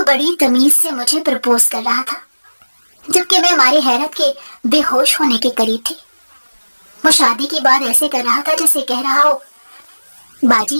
बड़ी तमीज से मुझे प्रपोज कर रहा था, जबकि मैं हमारी हैरत के बेहोश होने के करीब थी। वो शादी की बात ऐसे कर रहा था जैसे कह रहा हो,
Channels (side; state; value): both; inverted; correlation -1.00